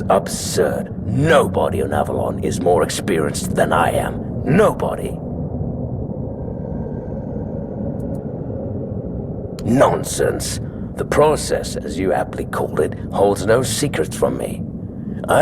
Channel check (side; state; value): both; identical; correlation 1.00